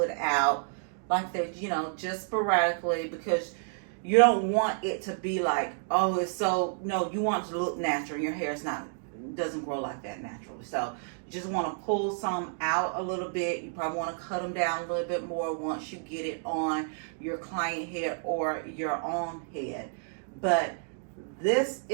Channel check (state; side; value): silent; left; digital silence